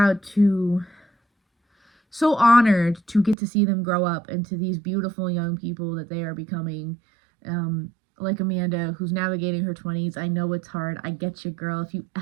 honored to get to see them grow up into these beautiful young people that they are becoming. Like Amanda, who's navigating her 20s. I know it's hard. I get you, girl. If you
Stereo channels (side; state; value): left; drops out; at 3.4 s